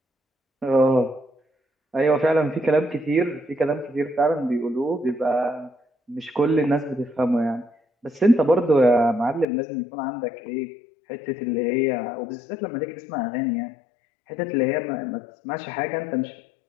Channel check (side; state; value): right; drops out; at 9.5 s